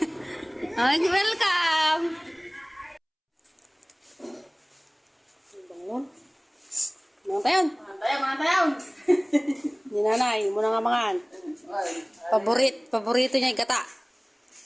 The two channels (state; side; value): identical; both; correlation 1.00